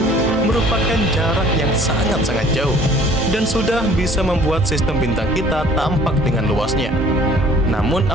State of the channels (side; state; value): both; normal; correlation 0.53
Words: merupakan jarak yang sangat-sangat jauh dan sudah bisa membuat sistem bintang kita tampak dengan luasnya. Namun,